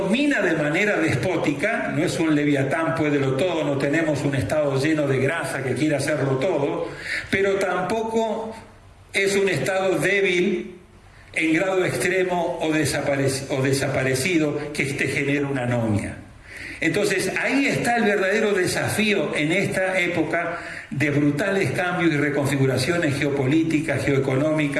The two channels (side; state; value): both; identical; correlation 1.00